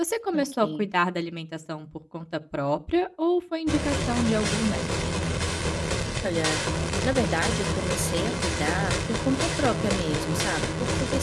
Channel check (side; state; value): both; identical; correlation 1.00